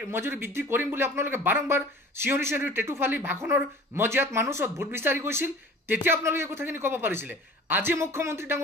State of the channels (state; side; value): normal; both; correlation 0.44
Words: মজুৰি বৃদ্ধি কৰিম বুলি আপোনালোকে বাৰম্বাৰ চিঞৰি টেটু ফালি ভাষণৰ মজিয়াত মানুহ ওচৰত ভোট বিচাৰি গৈছিল। তেতিয়া আপোনালোকে কথাখিনি ক'ব পাৰিছিলে। আজি মুখ্যমন্ত্ৰী